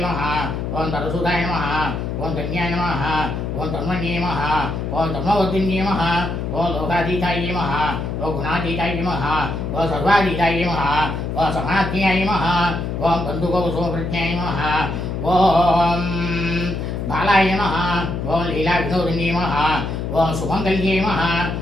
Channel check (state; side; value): noise; left; hum, 3 dB below the sound